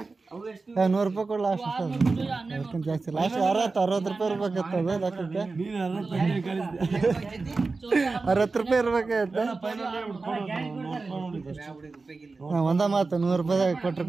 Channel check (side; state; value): left; quieter; 3.9 dB